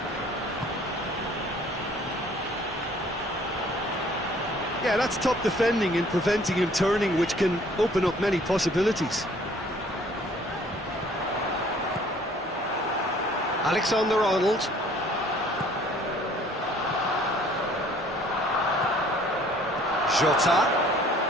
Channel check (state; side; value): normal; both; correlation 0.56